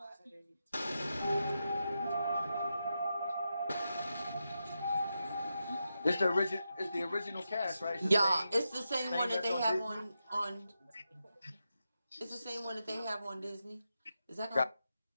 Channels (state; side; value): inverted; both; correlation -0.87